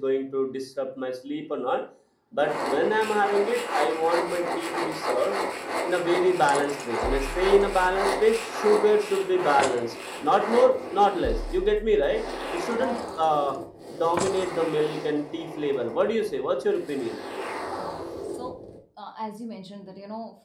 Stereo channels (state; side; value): identical; both; correlation 1.00